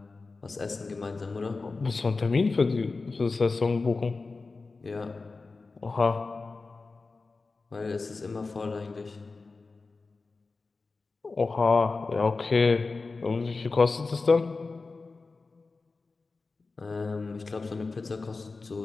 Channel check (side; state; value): right; quieter; 3.9 dB